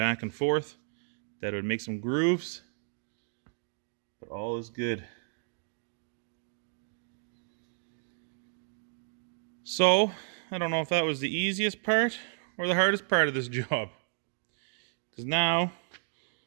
and forth that it would make some grooves, but all is good. So, I don't know if that was the easiest part or the hardest part of this job. Because now,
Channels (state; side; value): silent; left; digital silence